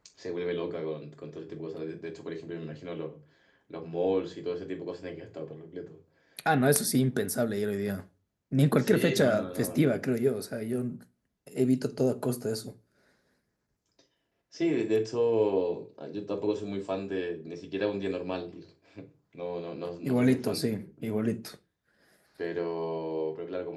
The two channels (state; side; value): identical; both; correlation 1.00